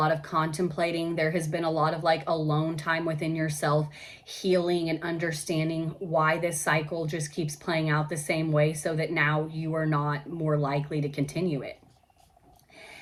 of contemplating. There has been a lot of like alone time within yourself, healing and understanding why this cycle just keeps playing out the same way so that now you are not more likely to continue it.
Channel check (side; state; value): both; identical; correlation 1.00